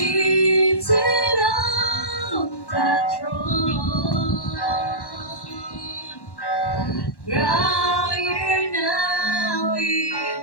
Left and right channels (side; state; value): right; late; 1.1 ms